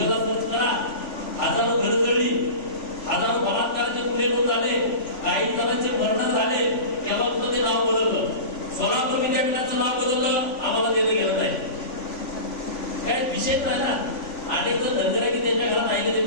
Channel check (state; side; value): late; right; 3.5 ms